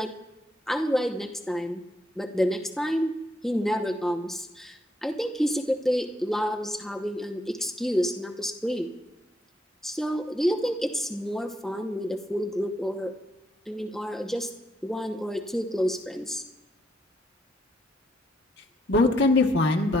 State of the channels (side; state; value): both; normal; correlation 0.75